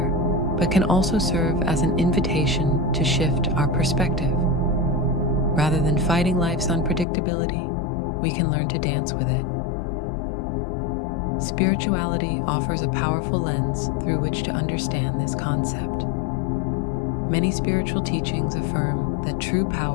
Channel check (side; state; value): right; drops out; at 7.1 s